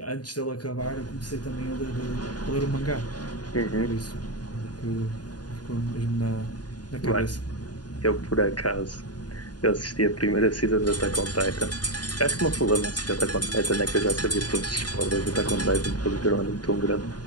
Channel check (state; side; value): late; right; 0.69 ms